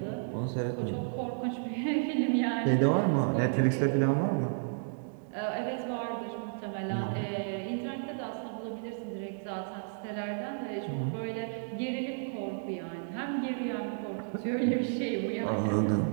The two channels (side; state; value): left; silent; digital silence